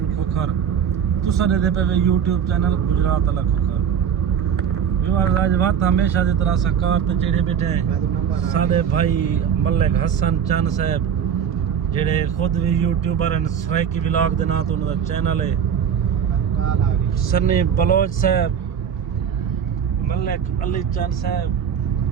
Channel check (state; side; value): quieter; left; 8.0 dB